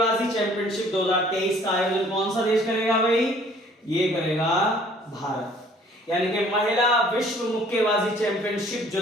चैंपियनशिप 2023 का आयोजन कौन सा देश करेगा भाई? ये करेगा भारत। यानी कि महिला विश्व मुक्केबाजी चैंपियनशिप जो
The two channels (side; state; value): both; normal; correlation 0.56